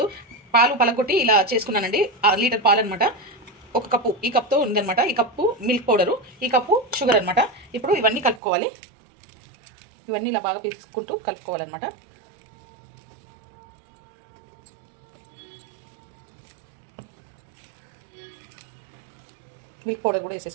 పాలు పలకొట్టి ఇలా చేసుకున్నానండి. లీటర్ పాలు అనమాట. ఒక కప్పు, ఈ కప్తో ఉందనమాట. ఈ కప్పు మిల్క్ పౌడరు, ఈ కప్పు షుగర్ అనమాట. ఇప్పుడు ఇవన్నీ కలుపుకోవాలి. ఇవన్నీ ఇలా బాగా తీసుకుంటూ కలుపుకోవాలన్నమాట. మిల్క్ పౌడర్ కూడా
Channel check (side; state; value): left; drops out; at 8.4 s